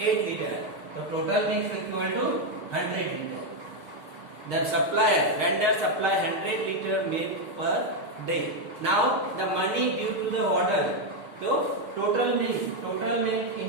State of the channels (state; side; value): late; left; 6.5 ms